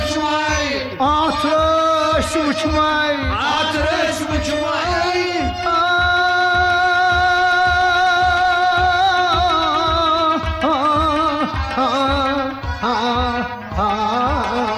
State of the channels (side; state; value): both; identical; correlation 1.00